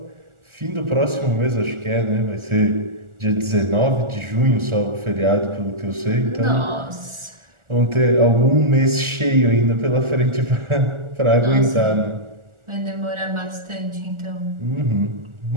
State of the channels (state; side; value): late; left; 1.4 ms